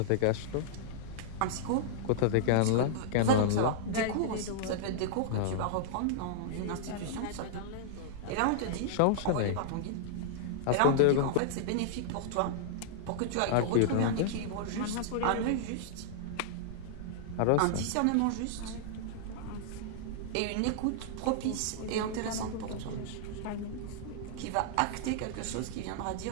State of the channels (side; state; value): both; different; correlation -0.02